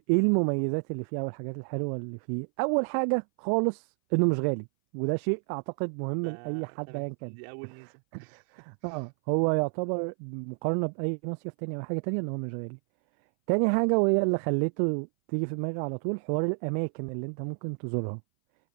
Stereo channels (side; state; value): left; silent; 58 dB below the other